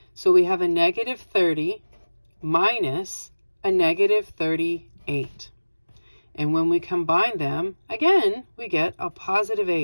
So we have a negative 30 minus a negative 38. And when we combine them, again, we get a positive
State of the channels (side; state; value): both; inverted; correlation -1.00